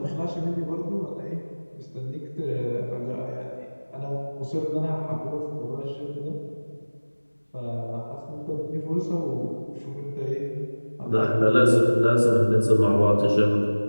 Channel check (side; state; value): both; inverted; correlation -1.00